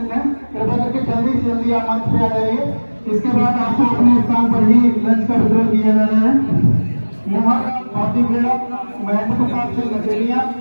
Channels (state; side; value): inverted; both; correlation -1.00